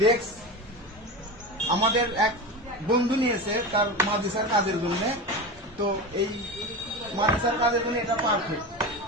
ডেস্ক আমাদের এক বন্ধু নিয়েছে তার মাদ্রাসার কাজের জন্য। তো এই মাদ্রাসার কাজের জন্য এটা পারফেক্ট।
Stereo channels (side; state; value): both; normal; correlation 0.24